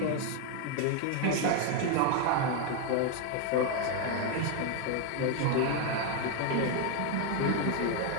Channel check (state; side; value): different; both; correlation 0.01